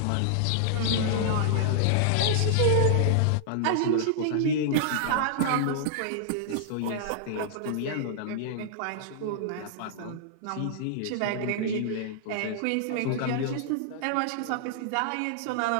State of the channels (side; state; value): both; different; correlation -0.01